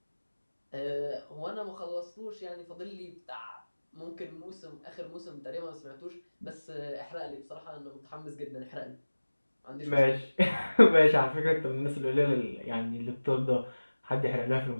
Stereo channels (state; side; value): inverted; both; correlation -1.00